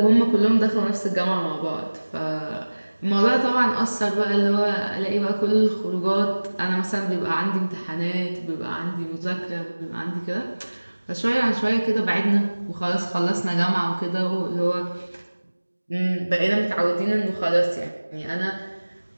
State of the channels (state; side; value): inverted; both; correlation -1.00